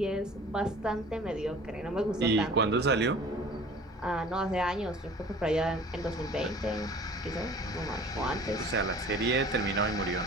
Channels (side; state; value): both; normal; correlation 0.46